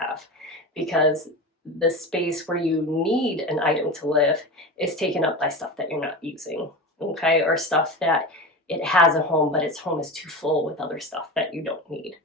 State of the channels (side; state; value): both; normal; correlation 0.26